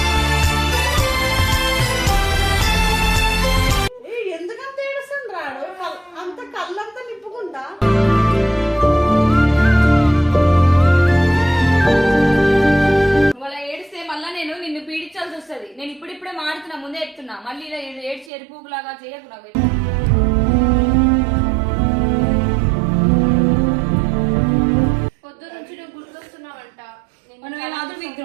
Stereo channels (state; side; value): drops out; left; at 18.3 s